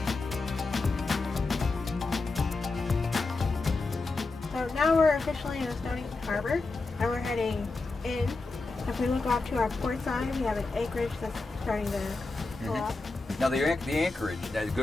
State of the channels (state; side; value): quieter; right; 3.6 dB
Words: So now we're officially in the Stonington Harbor, and we're heading in. If we look off to our port side, we have an anchorage that's starting to pull up. Now the anchorage, that